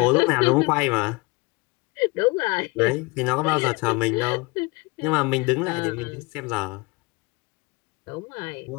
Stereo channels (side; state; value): right; quieter; 25.8 dB